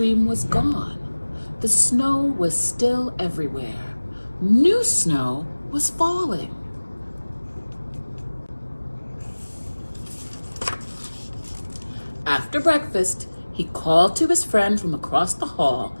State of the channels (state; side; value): inverted; both; correlation -1.00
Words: was gone. The snow was still everywhere. New snow was falling. After breakfast, he called to his friend from across the hall,